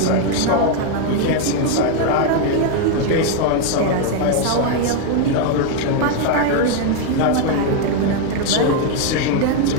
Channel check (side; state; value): both; different; correlation 0.01